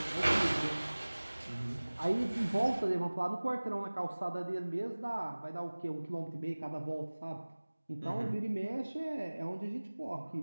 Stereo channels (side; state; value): both; inverted; correlation -1.00